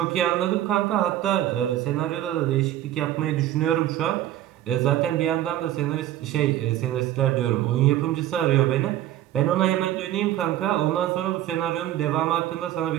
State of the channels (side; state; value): left; quieter; 12.9 dB